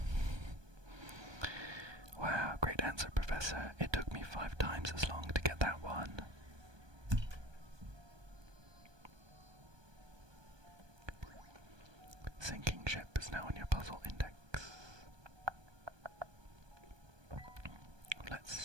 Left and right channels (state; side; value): late; left; 1.2 ms